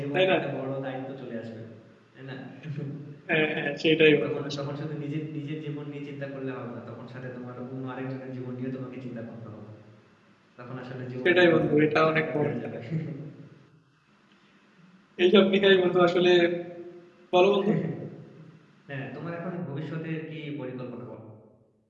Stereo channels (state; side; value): identical; both; correlation 1.00